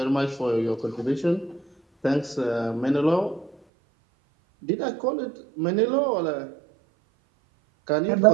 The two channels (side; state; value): left; drops out; at 3.6 s